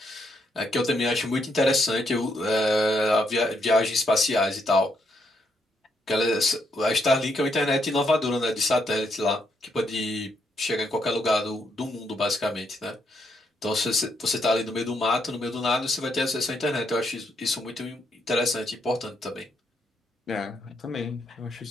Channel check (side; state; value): both; normal; correlation 0.77